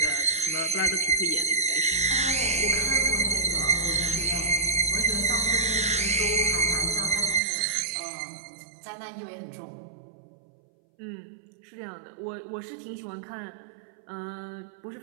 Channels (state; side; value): drops out; left; at 7.4 s